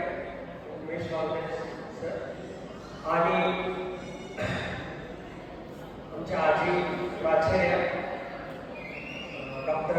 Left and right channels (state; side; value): identical; both; correlation 1.00